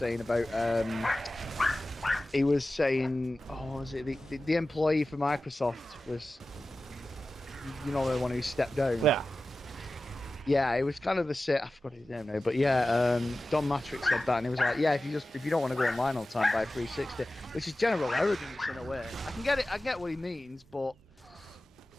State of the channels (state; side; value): normal; both; correlation 0.95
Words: about he was saying, oh, what was it the employee for Microsoft was, you know, the one who stepped down. Yeah, it was kind of the same. I forgot his name now, but yeah, Don Matrick said that, and he was like, yeah, if you don't want to go online all the time, buy 360, which is general arrogance in a way. I can get it. I get what he means, but